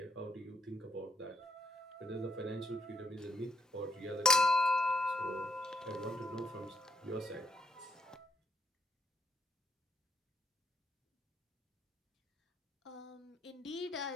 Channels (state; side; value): normal; both; correlation 0.72